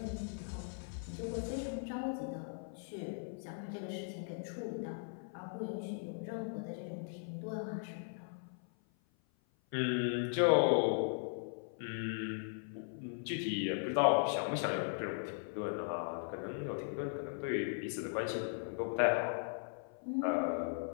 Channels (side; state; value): right; silent; 52 dB below the other